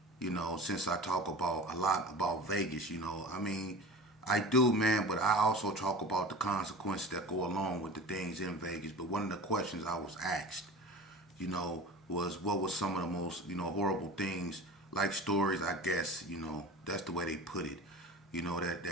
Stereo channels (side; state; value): both; normal; correlation 0.35